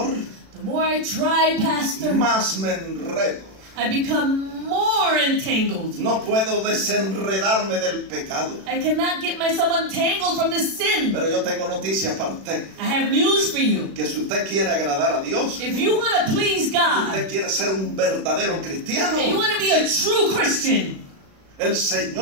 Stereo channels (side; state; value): left; late; 36 ms